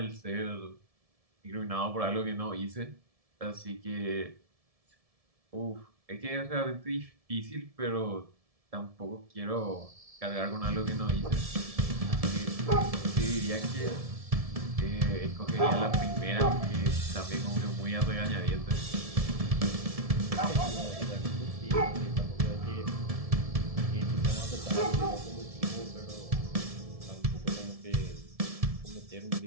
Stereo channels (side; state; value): left; late; 1.7 ms